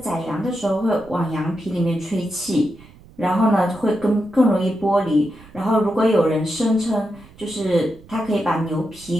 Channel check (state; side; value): noise; right; rumble, 23 dB below the sound